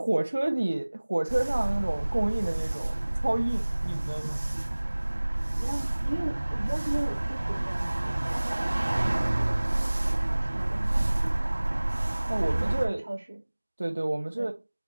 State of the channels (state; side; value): inverted; both; correlation -1.00